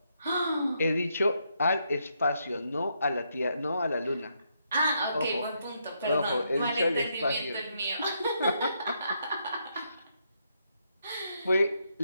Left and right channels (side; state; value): both; inverted; correlation -0.78